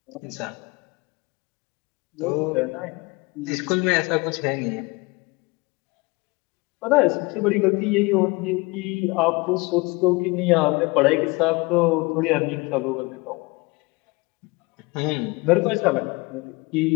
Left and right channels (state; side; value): quieter; right; 25.6 dB